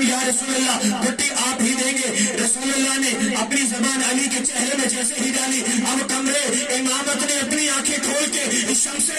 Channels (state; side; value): identical; both; correlation 1.00